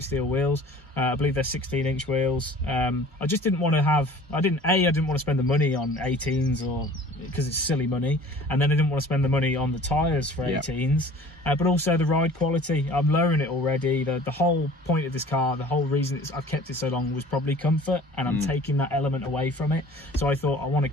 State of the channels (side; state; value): both; normal; correlation 0.47